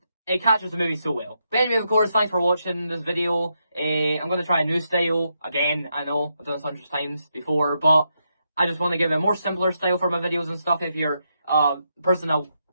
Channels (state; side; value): inverted; both; correlation -0.82